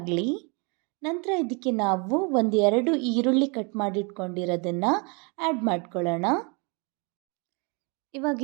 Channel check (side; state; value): left; quieter; 32.4 dB